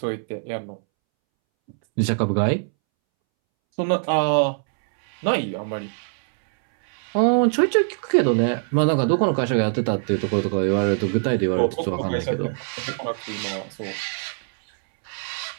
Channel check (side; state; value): left; silent; 63 dB below the other